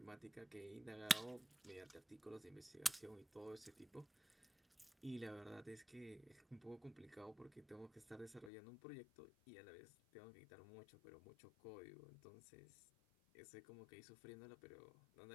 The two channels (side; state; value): right; drops out; at 8.5 s